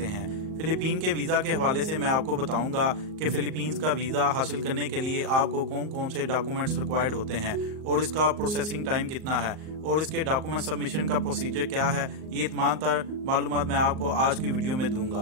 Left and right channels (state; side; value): late; left; 38 ms